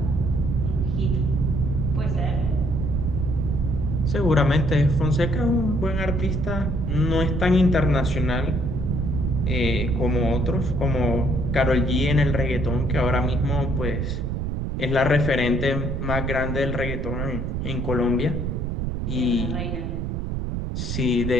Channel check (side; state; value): right; noise; rumble, 2 dB below the sound